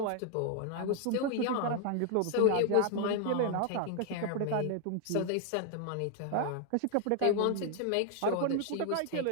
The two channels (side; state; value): both; different; correlation 0.00